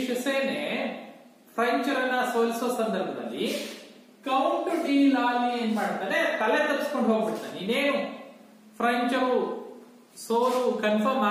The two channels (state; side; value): identical; both; correlation 1.00